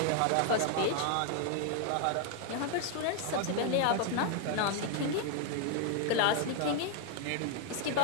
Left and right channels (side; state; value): both; different; correlation 0.00